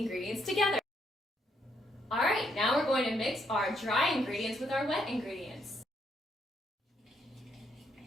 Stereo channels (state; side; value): normal; both; correlation 0.74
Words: together. Alright, now we're going to mix our dry ingredients with our wet ingredients.